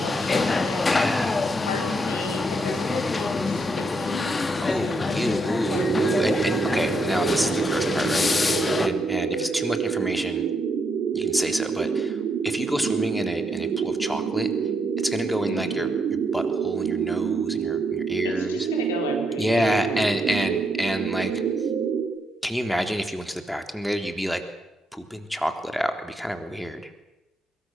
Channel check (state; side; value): normal; both; correlation 0.77